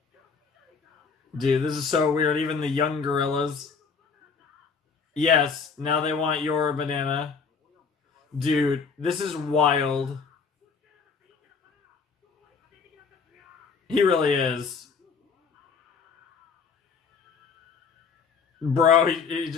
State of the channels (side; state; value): right; quieter; 5.5 dB